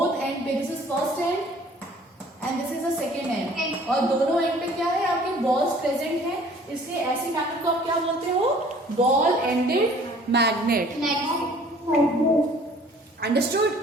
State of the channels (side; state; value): both; normal; correlation 0.53